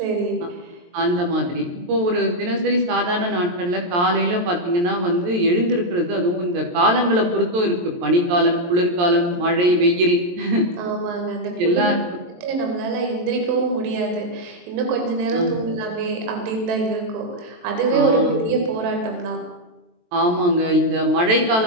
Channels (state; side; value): late; left; 23 ms